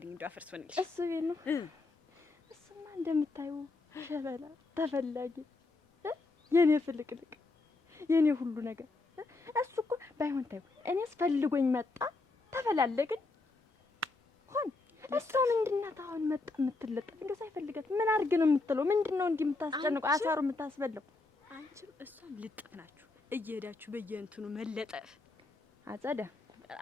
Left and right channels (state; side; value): quieter; right; 3.4 dB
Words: እንደው አፈርስ ሆነልሽ። እሱ ቤት ነው። እሱማ እንደምታዩ ሸበላ ተፈላጊ፣ የኔ ፍልቅልቅ፣ የኔ ሁሉ ነገር። እሱ እኮ ባይሆን ታዩ እኔስ ፈልጎኝ መጣ፣ ተፈላለግን፣ እሷ ምንድን ናት አሁን መጣ የምትለጠፍ? እንደው ሳይፈልጋት ምን አድርግ ነው የምትለው? ምንድን ነው እንዲህ የምታስጨንቀው? አሳሩ የምታስበላው? አንቺም እሷም ልጥፍ ናችሁ እየሄዳችሁ በየእንትኑ መለጠፍ። አጸዳ